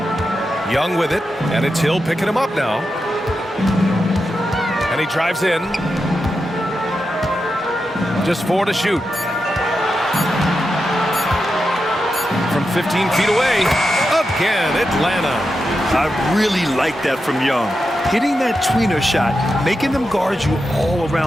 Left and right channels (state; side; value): normal; both; correlation 0.88